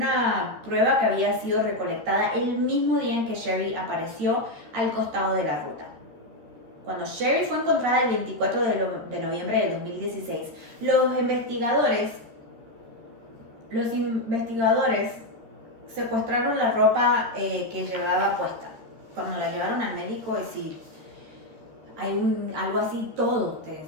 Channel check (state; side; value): late; left; 13 ms